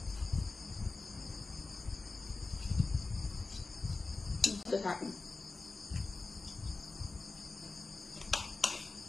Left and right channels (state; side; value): quieter; right; 3.7 dB